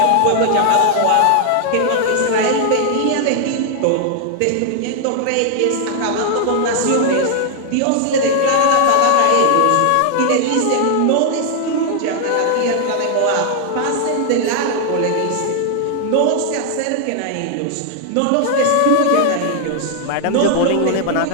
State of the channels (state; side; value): different; both; correlation 0.00